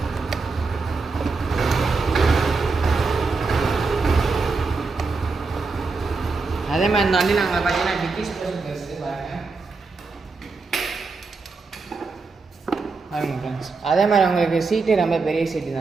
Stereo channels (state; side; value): quieter; left; 4.2 dB